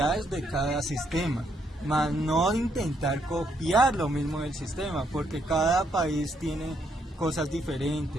de cada sistema, más no intentar copiar lo mismo del sistema, porque cada país tiene cosas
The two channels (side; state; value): both; normal; correlation 0.74